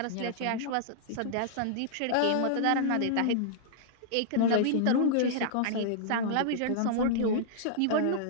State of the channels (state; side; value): different; both; correlation -0.01